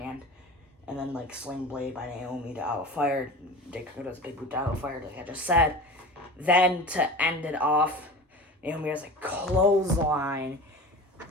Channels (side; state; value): both; normal; correlation 0.34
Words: and then sling blade by Naomi to Alpha Fire. Jay does a big boot to Alpha Fire, like I just said. Then to end it off, Naomi has a clothesline